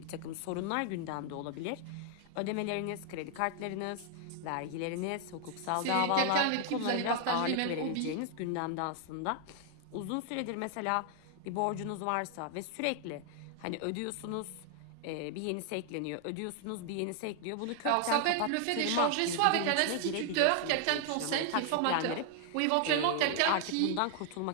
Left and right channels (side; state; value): both; different; correlation 0.00